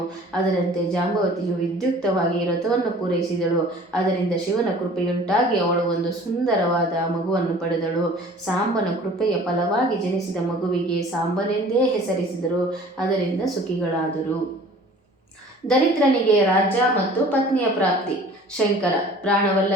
ಅದರಂತೆ ಜಾಂಬವತಿಯು ವಿದ್ಯುಕ್ತವಾಗಿ ವ್ರತವನ್ನು ಪೂರೈಸಿದಳು. ಅದರಿಂದ ಶಿವನ ಕೃಪೆಯುಂಟಾಗಿ ಅವಳು ಒಂದು ಸುಂದರವಾದ ಮಗುವನ್ನು ಪಡೆದಳು. ಸಾಂಬನ ಕೃಪೆಯ ಫಲವಾಗಿ ಜನಿಸಿದ ಮಗುವಿಗೆ ಸಾಂಬನೆಂದೇ ಹೆಸರಿಸಿದರು. ಅದರಿಂದ ಸುಖಿಗಳಾದರು. ದರಿದ್ರನಿಗೆ ರಾಜ್ಯ ಮತ್ತು ಪತ್ನಿಯ ಪ್ರಾಪ್ತಿ. ಶಂಕರ:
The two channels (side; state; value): both; normal; correlation 0.47